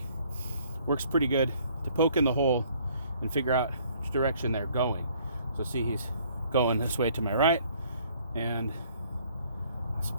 Works pretty good to poke in the hole and figure out which direction they're going. So see, he's going this way to my right, and that's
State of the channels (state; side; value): inverted; both; correlation -0.60